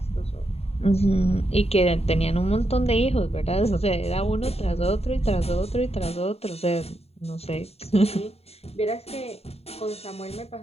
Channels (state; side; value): late; right; 0.30 ms